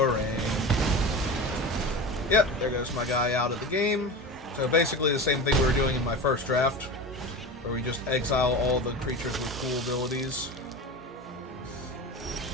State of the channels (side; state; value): both; normal; correlation 0.29